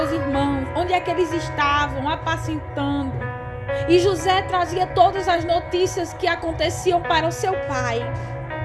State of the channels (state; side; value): identical; both; correlation 1.00